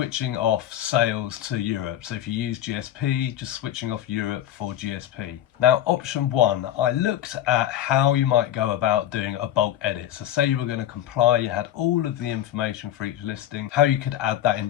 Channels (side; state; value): right; quieter; 11.8 dB